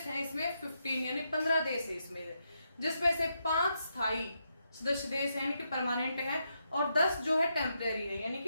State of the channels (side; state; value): both; inverted; correlation -0.82